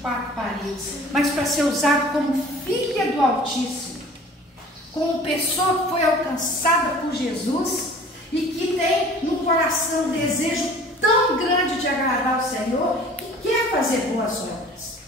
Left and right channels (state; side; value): normal; both; correlation 0.47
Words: 4 paredes, mas para ser usado como filha do Altíssimo, como pessoa que foi alcançada por Jesus e que tem no coração um desejo tão grande de agradar ao Senhor, que quer fazer boas obras.